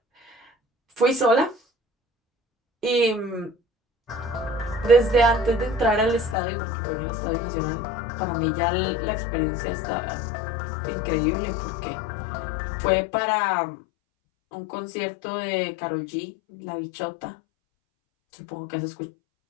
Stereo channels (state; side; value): drops out; right; at 6.4 s